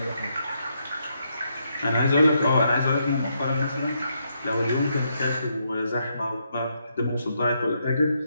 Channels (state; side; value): inverted; both; correlation -0.78